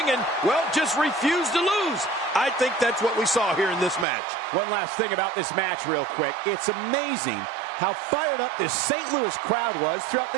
and, well, just refuse to lose. I think that's what we saw here in this match. One last thing about this match real quick. It's amazing how fired up this St. Louis crowd was throughout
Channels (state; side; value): drops out; left; at 4.0 s